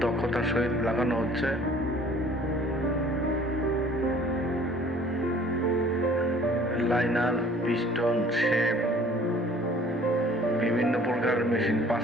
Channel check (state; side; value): noise; right; rumble, 30 dB below the sound